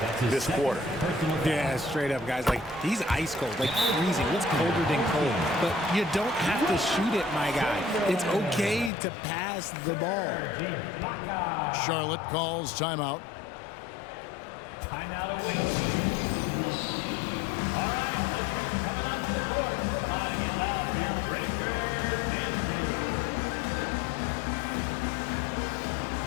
this quarter. Yeah, straight up, guys. Like, he's ice cold, like freezing. What's colder than cold? But you don't have to shoot it, my guy. It's okay to pass the ball. Charlotte calls timeout. Timeout away. All right, let's keep coming out to the court. Come on, get loud here. Breaker Andrew.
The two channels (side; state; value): right; drops out; at 8.9 s